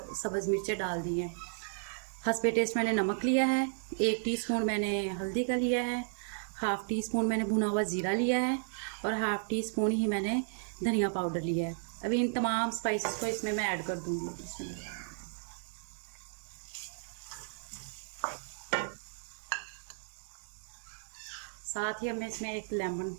सब्ज़ मिर्चें डाल दी हैं। हस्बे टेस्ट मैंने नमक लिया है। 1 टीस्पून मैंने हल्दी का लिया है। हाफ़ टी स्पून मैंने भुना हुआ ज़ीरा लिया है और हाफ़ टी स्पून ही मैंने धनिया पाउडर लिया है। अभी इन तमाम स्पाइसेस को इसमें मैं ऐड कर दूंगी। इसमें साथ ही अब मैं इसमें एक लेमन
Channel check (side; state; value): left; silent; digital silence